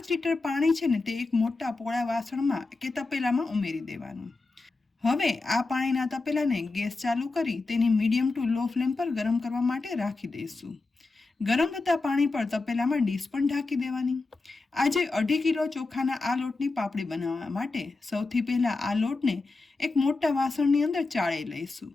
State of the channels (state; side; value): quieter; right; 3.6 dB